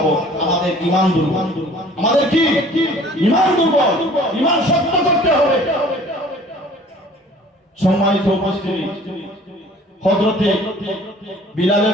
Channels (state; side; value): normal; both; correlation 0.51